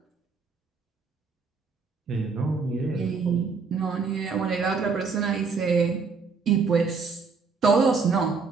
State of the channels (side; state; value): left; quieter; 4.9 dB